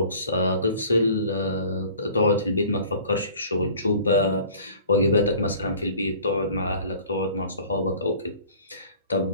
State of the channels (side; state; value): both; inverted; correlation -0.48